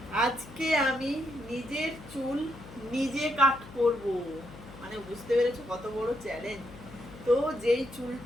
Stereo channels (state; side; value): noise; left; hum, 17 dB below the sound